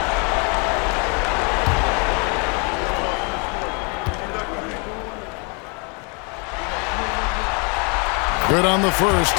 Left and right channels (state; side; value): quieter; right; 34.0 dB